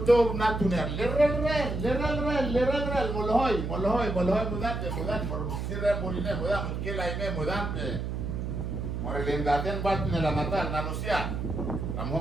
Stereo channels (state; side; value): noise; right; hum, 3 dB below the sound